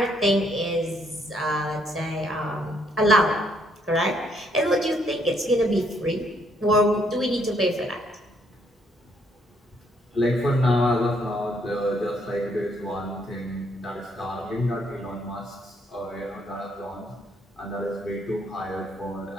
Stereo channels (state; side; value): normal; both; correlation 0.70